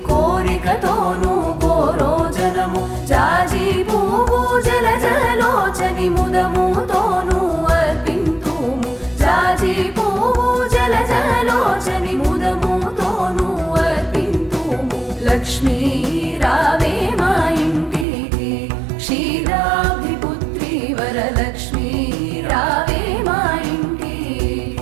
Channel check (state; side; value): drops out; left; at 18.1 s